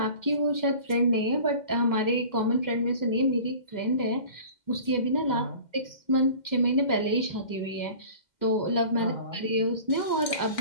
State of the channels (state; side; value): late; right; 2.1 ms